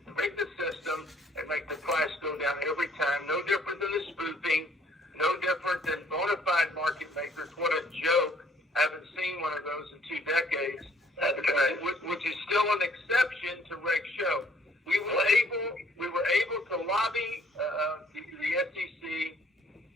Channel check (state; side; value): normal; both; correlation 0.61